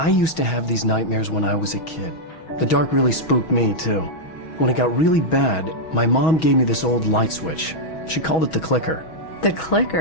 used to have these nightmares when I was a kid. The dark really spooked me, too. When it got really bad, my mom gave me this old light switch. She called it the clicker. The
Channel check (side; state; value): right; late; 6.2 ms